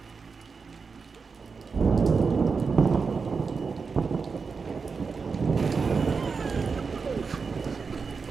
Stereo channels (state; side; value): quieter; left; 5.0 dB